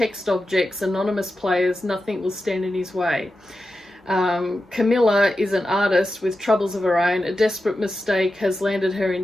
objects, anonymous players, nothing will stand in his way. Camilla is an artist with troubles of her own. A desperate mistake has landed her in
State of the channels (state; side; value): normal; both; correlation 0.91